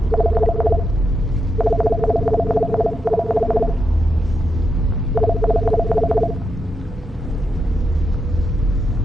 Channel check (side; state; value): both; normal; correlation 0.84